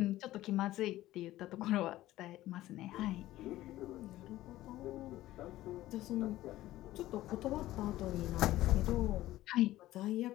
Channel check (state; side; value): quieter; right; 15.6 dB